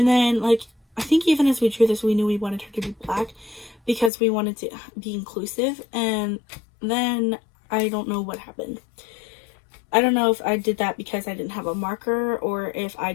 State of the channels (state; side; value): drops out; right; at 4.1 s